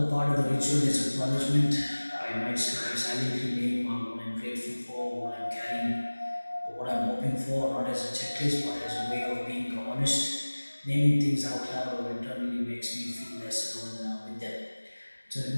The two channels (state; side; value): inverted; both; correlation -1.00